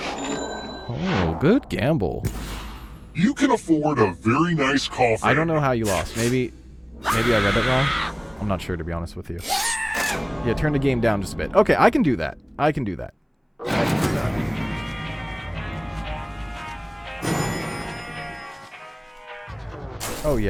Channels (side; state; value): both; identical; correlation 1.00